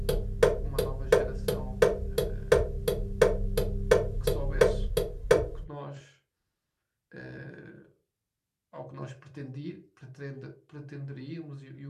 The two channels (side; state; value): both; identical; correlation 1.00